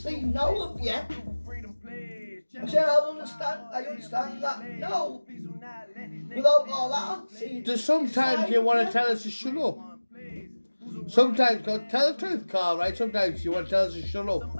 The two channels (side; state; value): both; inverted; correlation -1.00